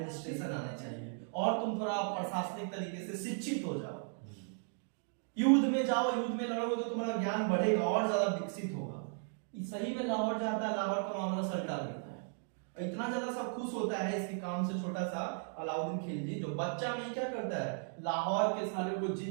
आना चाहिए और तुम थोड़ा प्रशासनिक तरीके से शिक्षित हो जाओ, युद्ध में जाओ, युद्ध में लड़ोगे तो तुम्हारा ज्ञान बढ़ेगा और ज्यादा विकसित होगा। सही में लाहौर जाता है, लाहौर का मामला सल्टा देता है। इतना ज्यादा सब खुश होता है इसके काम से छोटा सा अलाउद्दीन खिलजी, जो बच्चा में क्या करता है, लाहौर के सारे को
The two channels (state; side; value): silent; left; 54 dB below the other